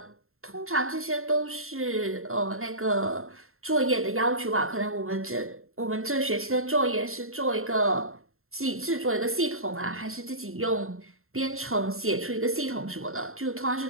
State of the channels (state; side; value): late; left; 0.62 ms